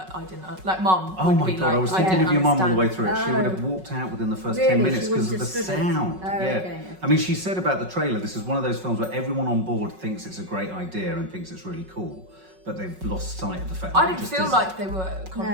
I didn't, like Mum. Oh would my be God, like, I was I thinking didn't of your mum all the way understand. through it. She would have walked out within the first Really? 10 minutes She because of wouldn't the have stood it? sound. Oh, Yeah. okay. I mean, she said about the trailer, this is one of those films where everyone on board thinks it's a great idea and thinks it's really cool, but they've lost sight of the fact that I it didn't just feel isn't. like they were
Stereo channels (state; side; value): late; left; 5.4 ms